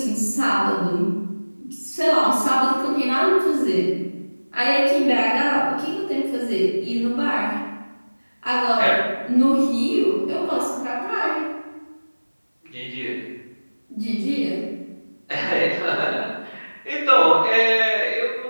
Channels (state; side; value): inverted; both; correlation -1.00